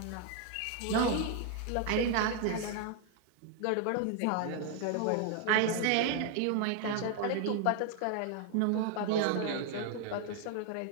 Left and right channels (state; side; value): different; both; correlation 0.00